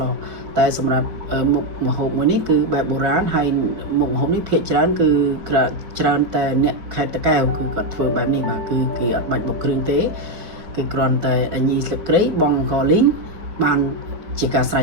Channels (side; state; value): left; late; 4.7 ms